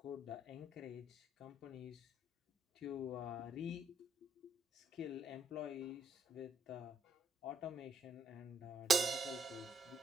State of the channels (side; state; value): both; normal; correlation 0.69